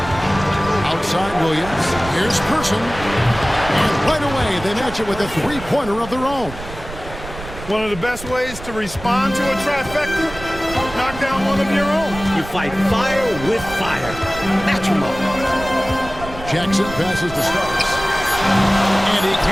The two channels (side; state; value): right; noise; rumble, 13 dB below the sound